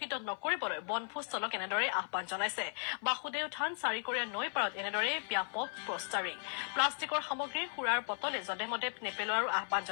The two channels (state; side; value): silent; right; 54 dB below the other